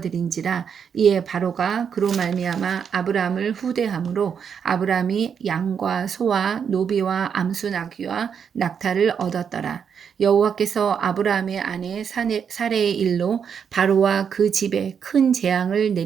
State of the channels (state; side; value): quieter; left; 7.2 dB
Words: 이에 바로가 그로 말미암아 아브라함을 후대함으로 아브라함이 양과 소와 노비와 암수 나귀와 낙타를 얻었더라. 여호와께서 아브라함의 아내 사레의 일로 바로와 그 집에 큰 재앙을